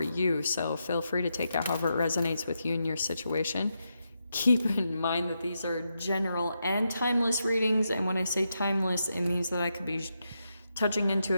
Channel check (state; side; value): inverted; both; correlation -0.85